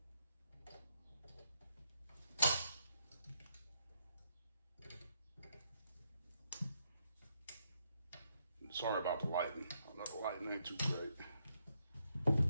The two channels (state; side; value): inverted; both; correlation -0.78